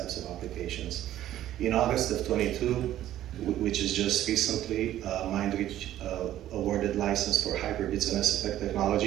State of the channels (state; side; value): quieter; left; 12.9 dB